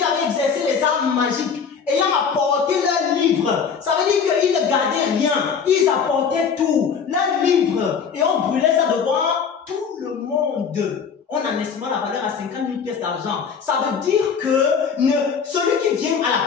avaient exercé les arts magiques, ayant apporté leurs livres, ça veut dire qu'ils ne gardaient rien, ils apportaient tout, leurs livres, et on brûlait ça devant tout le monde. On en estimait la valeur à 50 000 pièces d'argent. Ça veut dire que celui qui vient à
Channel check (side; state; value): right; quieter; 6.4 dB